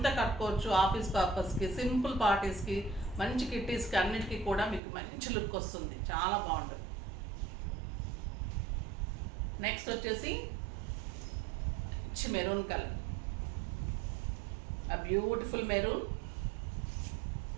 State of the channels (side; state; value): left; drops out; at 4.8 s